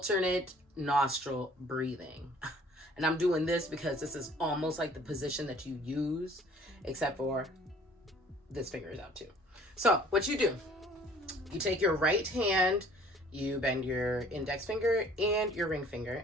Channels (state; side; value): normal; both; correlation 0.54